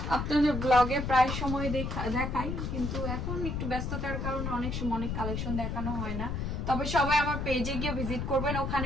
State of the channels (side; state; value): left; noise; rumble, 3 dB below the sound